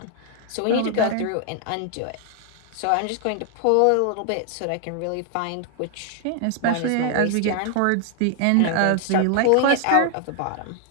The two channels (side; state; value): both; different; correlation 0.00